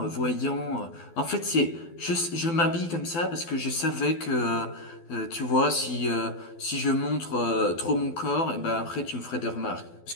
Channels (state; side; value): late; right; 12 ms